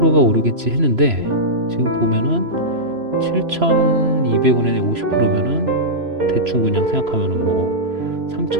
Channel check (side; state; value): left; late; 3.0 ms